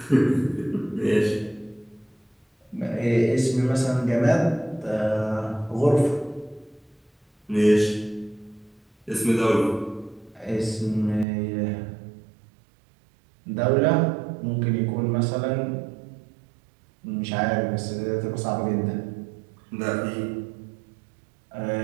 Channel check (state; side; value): drops out; left; at 11.2 s